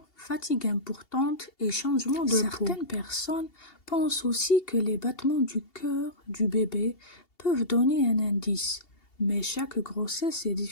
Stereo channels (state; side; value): late; right; 2.7 ms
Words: fatigue importante et changement de peau. Certaines personnes pensent aussi que les battements du cœur du bébé peuvent donner un indice, mais chaque grossesse est